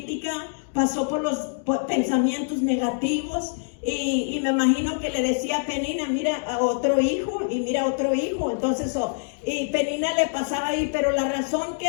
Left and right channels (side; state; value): right; silent; 62 dB below the other